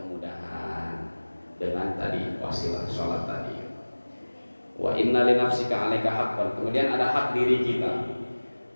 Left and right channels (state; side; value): inverted; both; correlation -1.00